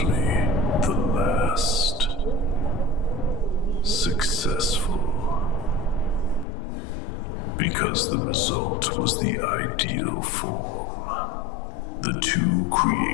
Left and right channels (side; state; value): right; drops out; at 6.5 s